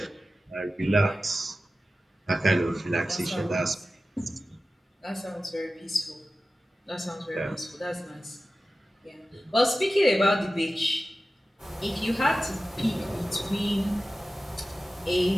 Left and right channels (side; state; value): both; normal; correlation 0.95